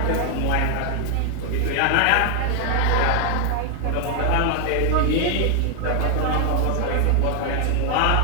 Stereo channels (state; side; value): different; both; correlation 0.00